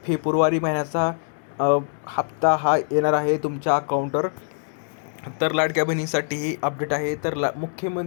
फेब्रुवारी महिन्याचा हप्ता हा येणार आहे तुमच्या अकाउंटवर. तर लाडक्या बहिणीसाठी ही अपडेट आहे. तर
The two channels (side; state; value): right; silent; digital silence